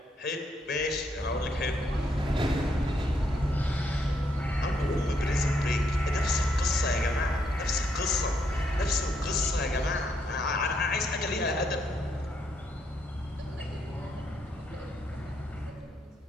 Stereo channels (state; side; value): normal; both; correlation 0.75